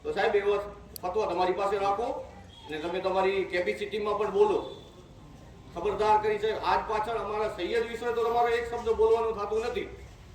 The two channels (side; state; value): both; identical; correlation 1.00